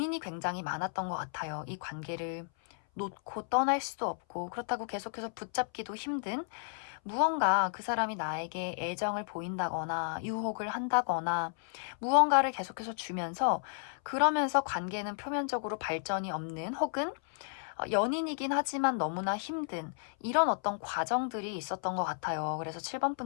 굉장히 많았던 것 같아요. 이 관계를 놓고 떠날 수도 없고, 그렇다고 계속해서 붙잡기도 힘든, 무언가 그 사람이 나에게 애정을 보인다거나 유혹을 한다거나 무언가를 계속해서 주면서, 그러면서 관계는 표면적으로 발전이 없는, 혹은 연인이긴 하지만 너무나 힘든 이런 어떤 과정들이 있었던 것 같아요. 그래서 7번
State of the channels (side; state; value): right; silent; 56 dB below the other